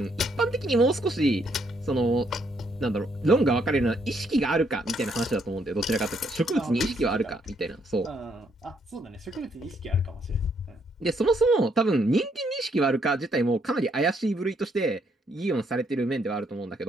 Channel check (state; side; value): normal; both; correlation 0.72